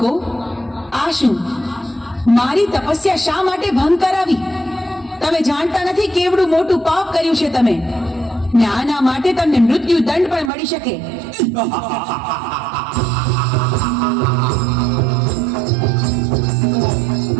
આ શું? મારી તપસ્યા શા માટે ભંગ કરાવી? તમે જાણતા નથી કેવડું મોટું પાપ કર્યું છે તમે, ને આના માટે તમને મૃત્યુ દંડ પણ મળી શકે.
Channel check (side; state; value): left; drops out; at 10.5 s